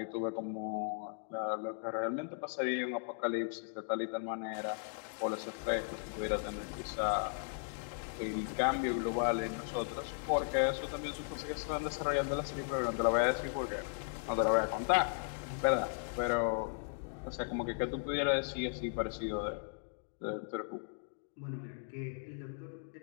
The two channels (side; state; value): right; silent; digital silence